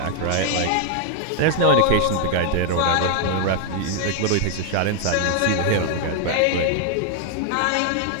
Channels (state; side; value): different; both; correlation 0.00